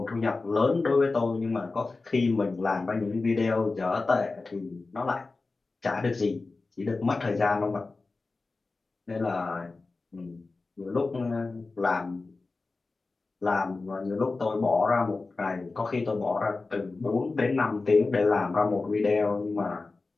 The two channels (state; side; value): quieter; right; 3.7 dB